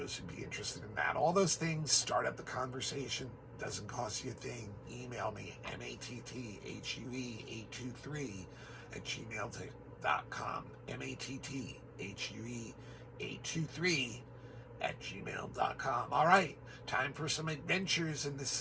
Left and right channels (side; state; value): both; identical; correlation 1.00